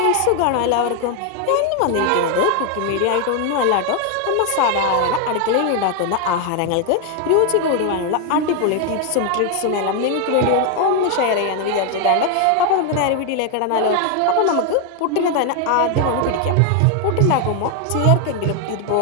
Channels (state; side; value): different; both; correlation 0.01